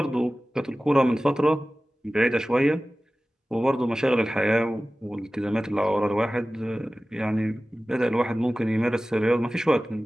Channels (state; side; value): normal; both; correlation 0.96